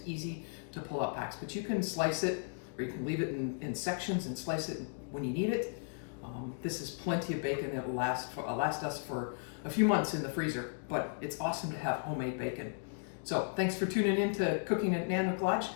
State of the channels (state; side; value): silent; right; digital silence